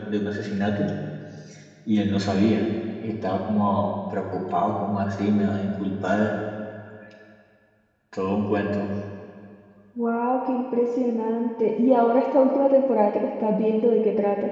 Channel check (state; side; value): identical; both; correlation 1.00